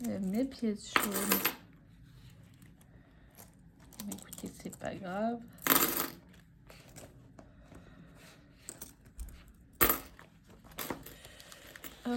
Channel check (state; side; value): identical; both; correlation 1.00